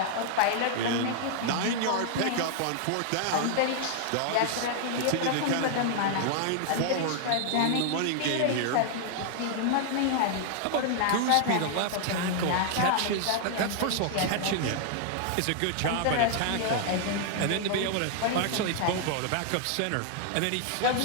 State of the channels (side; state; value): both; different; correlation 0.00